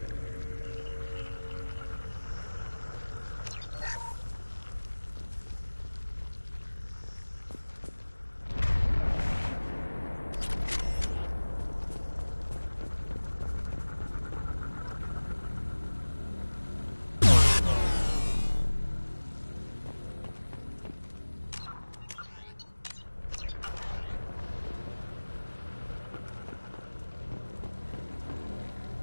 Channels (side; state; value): both; inverted; correlation -1.00